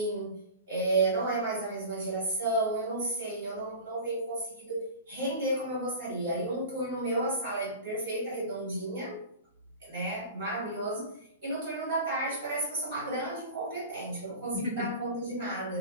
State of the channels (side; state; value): both; inverted; correlation -0.34